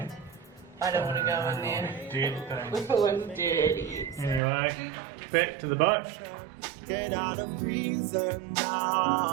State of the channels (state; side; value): drops out; left; at 4.4 s